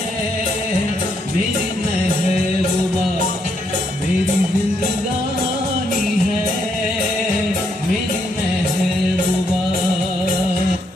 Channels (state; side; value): normal; both; correlation 0.75